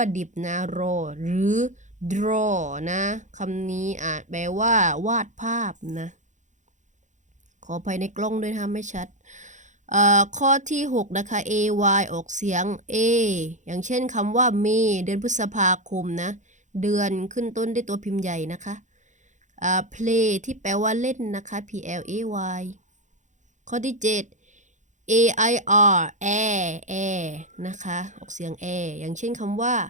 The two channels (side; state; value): left; late; 0.35 ms